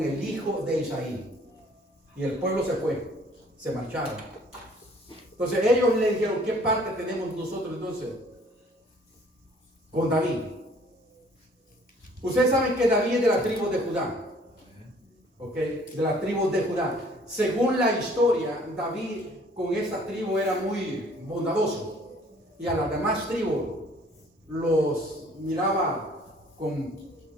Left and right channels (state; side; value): normal; both; correlation 0.57